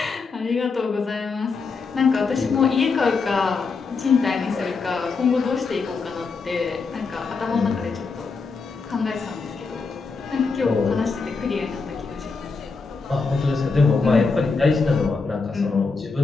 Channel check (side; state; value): right; quieter; 4.6 dB